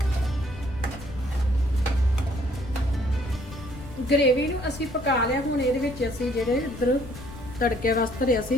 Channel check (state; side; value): noise; left; rumble, 15 dB below the sound